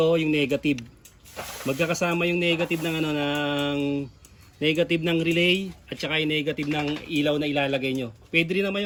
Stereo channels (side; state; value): both; identical; correlation 1.00